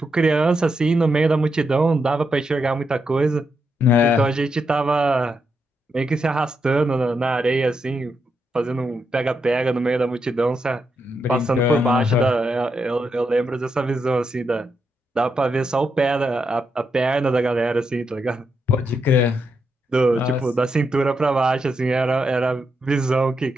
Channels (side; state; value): both; normal; correlation 0.83